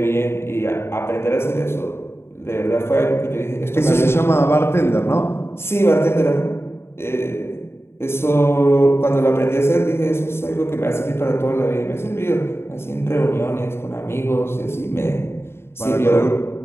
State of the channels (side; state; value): right; late; 0.12 ms